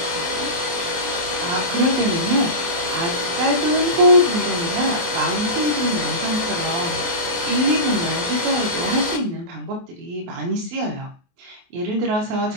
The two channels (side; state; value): left; late; 23 ms